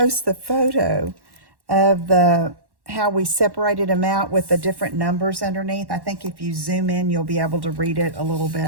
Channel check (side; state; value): left; late; 1.1 ms